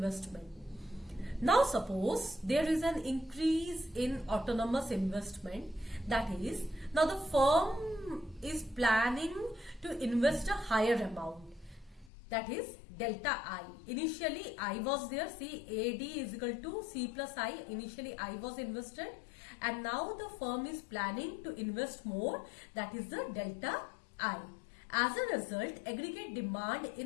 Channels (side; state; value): right; drops out; at 12.1 s